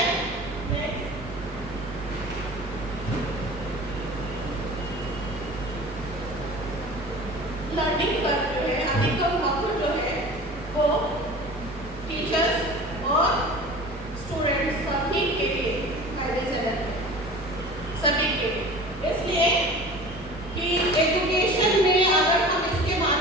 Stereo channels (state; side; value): normal; both; correlation 0.39